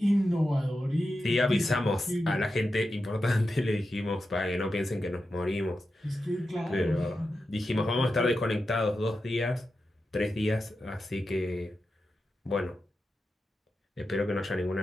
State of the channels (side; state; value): both; normal; correlation 0.90